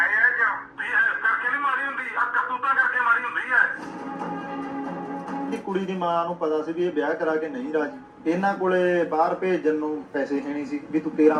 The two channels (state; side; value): identical; both; correlation 1.00